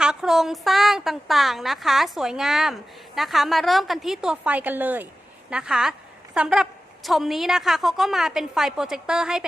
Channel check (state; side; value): normal; both; correlation 0.95